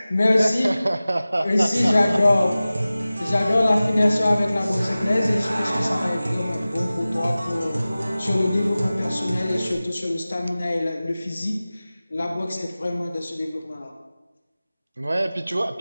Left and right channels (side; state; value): both; inverted; correlation -0.97